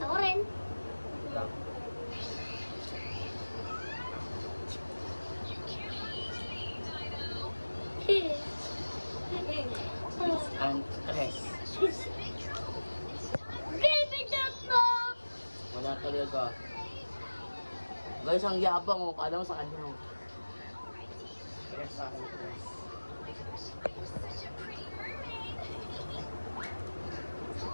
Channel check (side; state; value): both; inverted; correlation -1.00